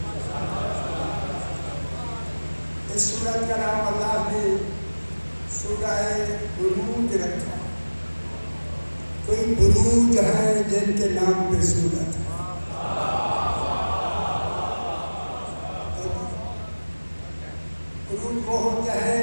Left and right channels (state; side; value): inverted; both; correlation -1.00